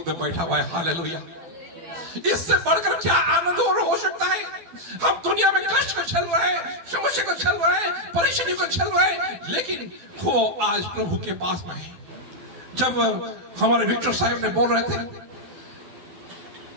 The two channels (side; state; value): left; late; 12 ms